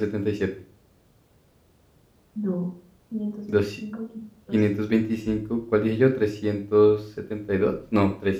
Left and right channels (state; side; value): identical; both; correlation 1.00